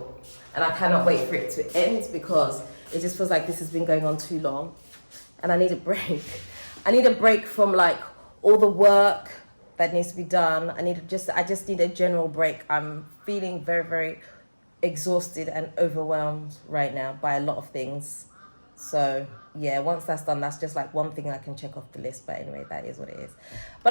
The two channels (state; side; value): inverted; both; correlation -1.00